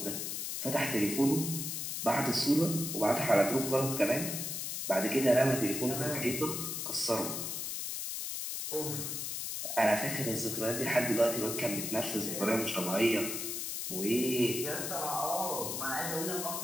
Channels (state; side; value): noise; left; hiss, 3 dB below the sound